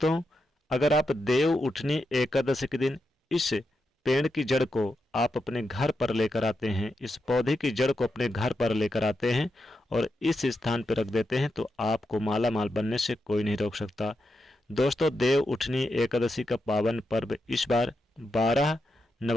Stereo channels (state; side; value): normal; both; correlation 0.86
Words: अगर आप देव उठनी एकादशी के दिन इस पेड़ की जड़ को आप अपने घर पर लेकर आते हैं, इस पौधे की जड़ को अपने घर पर लेकर आते हैं और इस स्थान पर रख देते हैं तो आपको माला माल बनने से कोई नहीं रोक सकता। दोस्तों, देव उठनी एकादशी का पावन पर्व इस बार 12